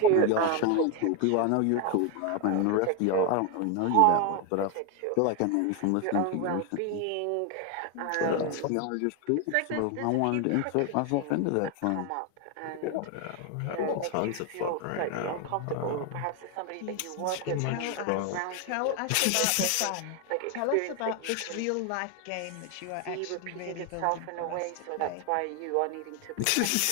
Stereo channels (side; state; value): both; different; correlation 0.01